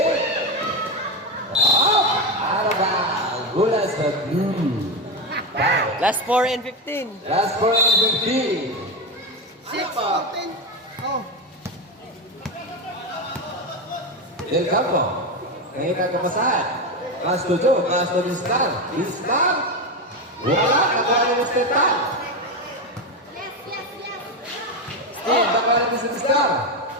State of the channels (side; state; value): both; normal; correlation 0.14